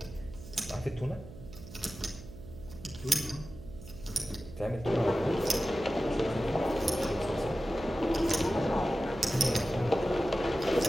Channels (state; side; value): noise; right; hum, 15 dB below the sound